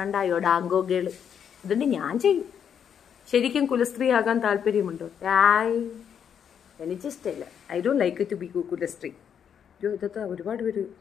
ഡാങ്കോകള്. അതുകൊണ്ട് ഞാൻ ചെയ്യും. ശരിക്കും കുലസ്ത്രീ ആകാൻ താല്പര്യമുണ്ടോ? എനിക്കിഷ്ടമില്ല. I don't like to be kulasthree. ഇതൊക്കെ ഒരുപാട് പേര്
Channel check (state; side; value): quieter; right; 8.1 dB